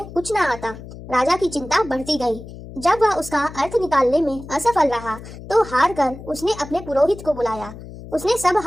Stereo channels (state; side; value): noise; left; hum, 14 dB below the sound